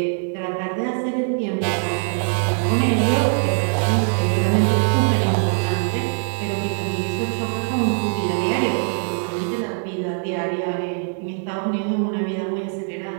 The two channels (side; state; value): left; silent; 62 dB below the other